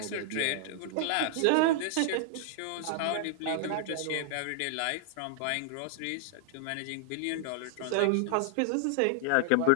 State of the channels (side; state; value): both; different; correlation -0.01